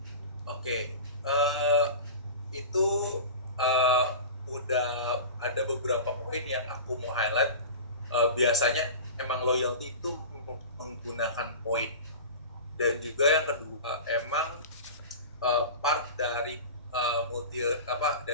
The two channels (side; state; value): both; inverted; correlation -0.32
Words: Oke. Itu udah ada beberapa poin yang aku mau highlight. Biasanya emang loyalty itu menggunakan poin, dan juga yang kedua emang part dari